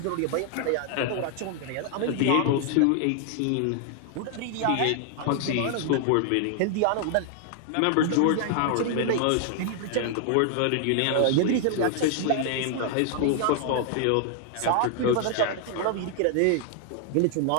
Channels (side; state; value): both; different; correlation 0.00